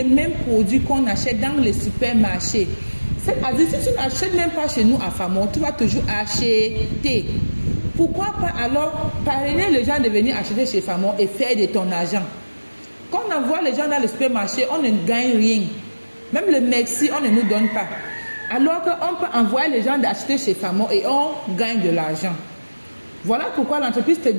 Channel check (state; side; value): inverted; both; correlation -1.00